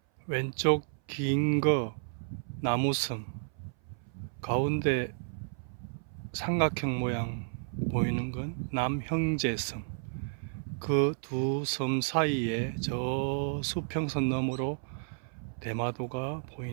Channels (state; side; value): silent; left; 56 dB below the other